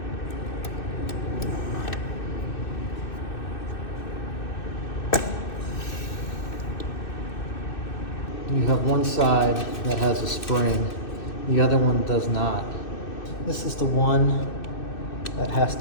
You have one side that has a spring, the other one does not. This is the one that has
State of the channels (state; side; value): late; right; 2.6 ms